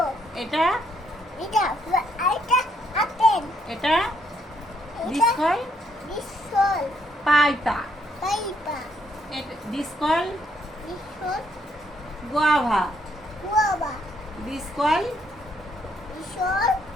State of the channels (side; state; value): both; normal; correlation 0.72